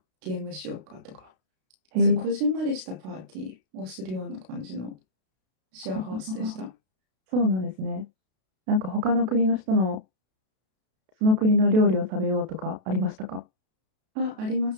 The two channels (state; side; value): late; left; 32 ms